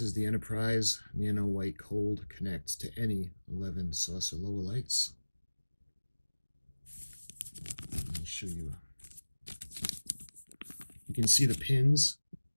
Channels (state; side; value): inverted; both; correlation -1.00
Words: is the Enterprise Nano White Cold, connects to any 11 saucer lower lights. Let me show you. You can see the pins